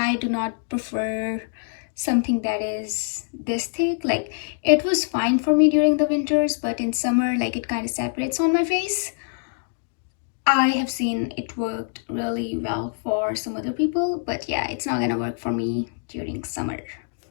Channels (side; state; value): right; silent; digital silence